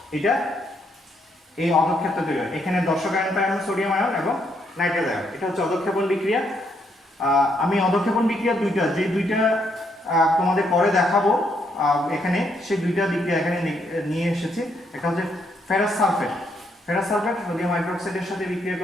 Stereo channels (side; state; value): both; normal; correlation 0.74